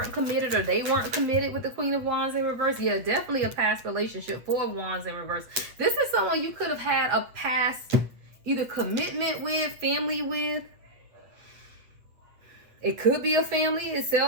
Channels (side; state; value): left; late; 8.5 ms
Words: committed, or they weren't committed with the Queen of Wands in reverse. Yeah, definitely a past relationship. Four of Wands in reverse. This is someone you could have had a past either commitment with, family with. It could be a family